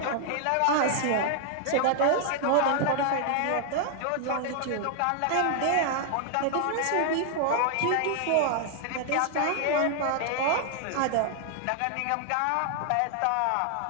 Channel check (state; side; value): different; both; correlation 0.00